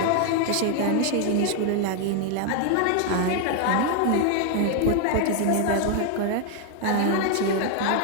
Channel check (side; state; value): both; different; correlation 0.00